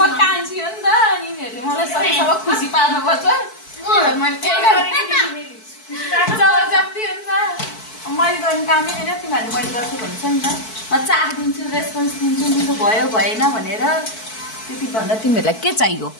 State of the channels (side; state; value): right; late; 4.6 ms